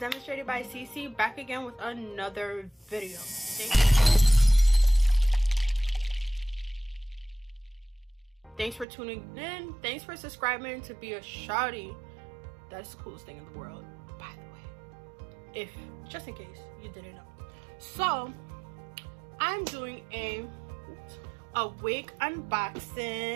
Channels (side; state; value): left; drops out; at 8.8 s